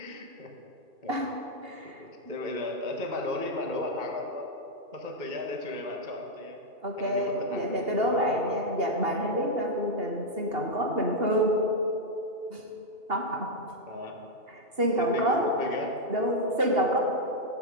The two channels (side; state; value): left; late; 2.8 ms